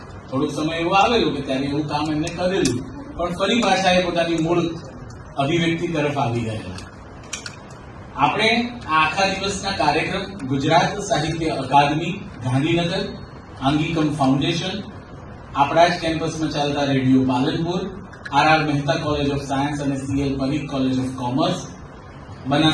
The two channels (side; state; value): both; identical; correlation 1.00